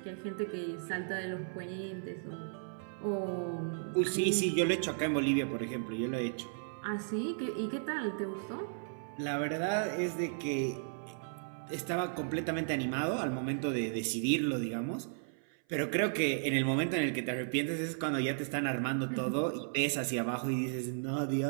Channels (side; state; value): left; silent; 55 dB below the other